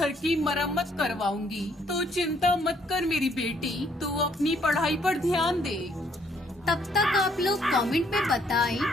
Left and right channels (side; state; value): both; normal; correlation 0.67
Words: की मरम्मत करवाऊंगी। तो चिंता मत कर मेरी बेटी, तू अपनी पढ़ाई पर ध्यान दे। तब तक आप लोग कमेंट में बताएं